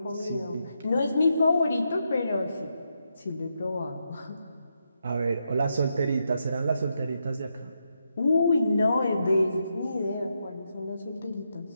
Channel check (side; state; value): both; inverted; correlation -0.82